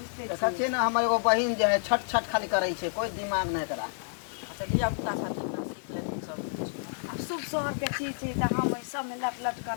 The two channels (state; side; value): silent; right; digital silence